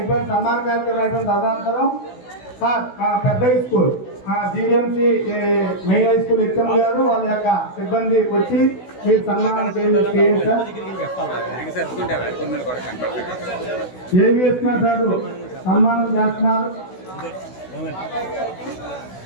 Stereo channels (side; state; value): right; late; 16 ms